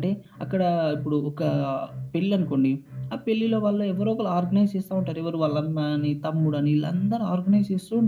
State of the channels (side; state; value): both; identical; correlation 1.00